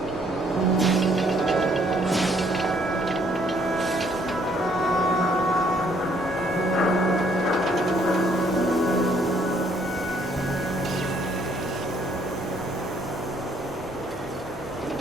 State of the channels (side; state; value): both; normal; correlation 0.65